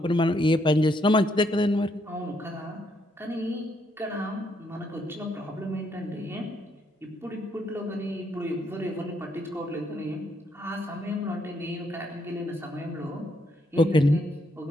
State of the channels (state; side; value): normal; both; correlation 0.74